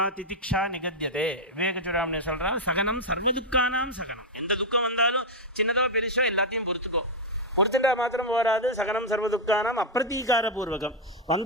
திதிக்ஷா நிகத்தியதே. விவேக சூடாமணி சொல்கிறான், சகனம் சர்வதுக்கானாம் சகனம். எந்த துக்கம் வந்தாலும் சின்னதோ பெருசோ எல்லாத்தையும் பொறுத்துக்கோ. பொறுத்துட்டா மாத்திரம் போராது. சகனம் சர்வதுக்கானாம் அப்பிரதீகார பூர்வகம்.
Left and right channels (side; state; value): both; normal; correlation 0.00